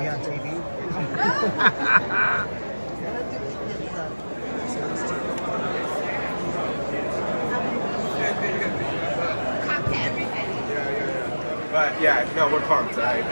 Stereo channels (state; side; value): inverted; both; correlation -1.00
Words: on TV. But yeah, no, we're pumped. I